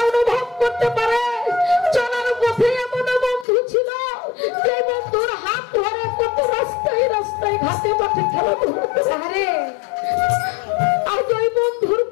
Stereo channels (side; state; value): right; drops out; at 3.5 s